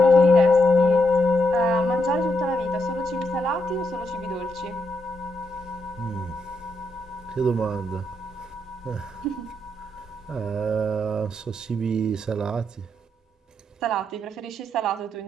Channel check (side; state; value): both; normal; correlation 0.80